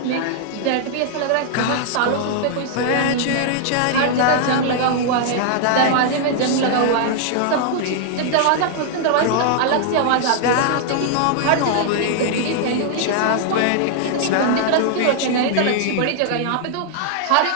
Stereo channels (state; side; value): different; both; correlation -0.01